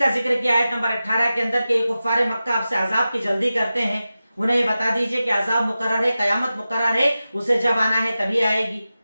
जिक्र किया आयत नंबर 18 के अंदर के कुफ्फारे मक्का आपसे अजाब की जल्दी करते हैं, उन्हें ये बता दीजिए कि अजाब मुकर्रर है, कयामत मुकर्रर है, उसे जब आना है तभी आएगी।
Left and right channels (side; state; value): both; inverted; correlation -0.94